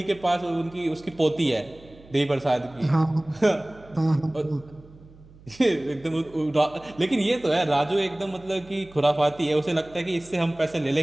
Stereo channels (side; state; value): right; noise; hum, 23 dB below the sound